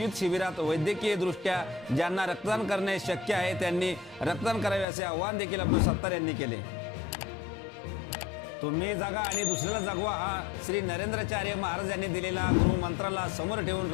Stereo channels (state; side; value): drops out; right; at 4.9 s